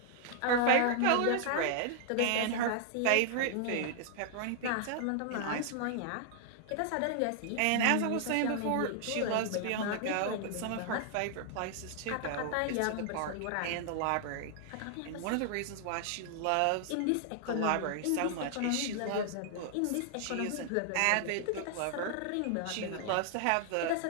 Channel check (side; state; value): both; different; correlation 0.00